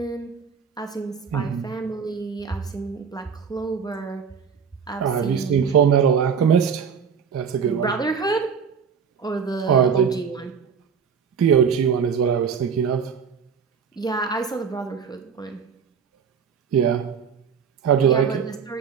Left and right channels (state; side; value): quieter; left; 6.7 dB